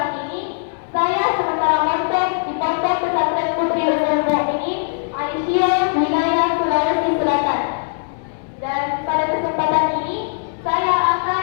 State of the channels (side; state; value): right; silent; 66 dB below the other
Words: ini, saya sementara mondok di Pondok Pesantren Putri Ummul Mukminin Aisyah, wilayah Sulawesi Selatan. Dan pada kesempatan ini, saya akan